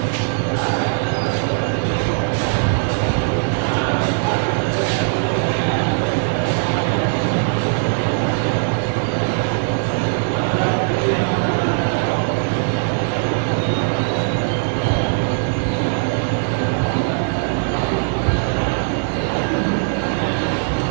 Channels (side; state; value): left; silent; digital silence